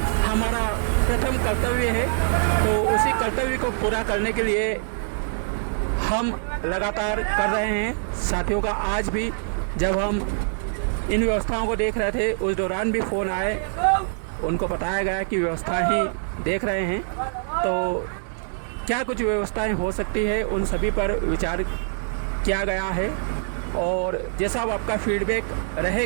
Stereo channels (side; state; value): left; silent; 62 dB below the other